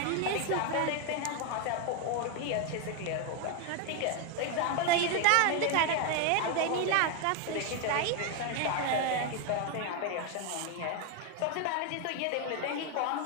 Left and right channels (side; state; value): both; different; correlation 0.01